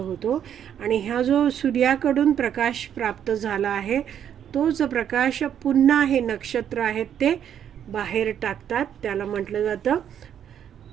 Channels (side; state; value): left; quieter; 9.3 dB